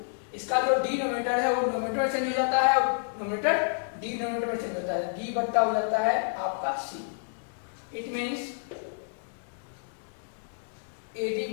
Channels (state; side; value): silent; right; digital silence